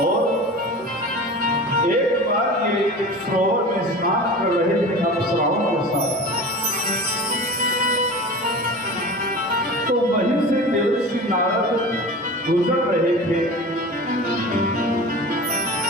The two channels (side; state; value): both; normal; correlation 0.35